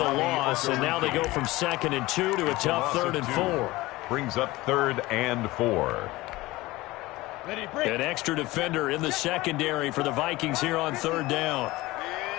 loss, and now they go from 2nd and 2 to a tough 3rd and 4. Brings up 3rd and 4. An extra defender in the secondary for the Vikings here on 3rd down. I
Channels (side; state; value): right; quieter; 19.5 dB